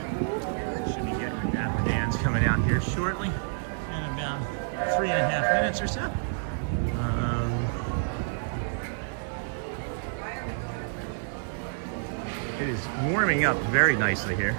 should be getting the Dapper Dans coming out here shortly in about 3.5 minutes or so. It is warming up very nicely here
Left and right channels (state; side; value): silent; left; 59 dB below the other